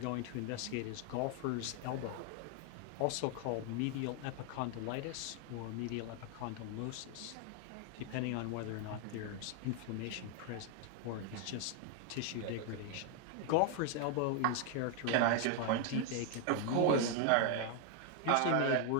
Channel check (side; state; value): both; different; correlation 0.00